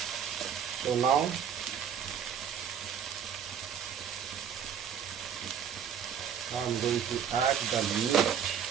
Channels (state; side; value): quieter; left; 8.1 dB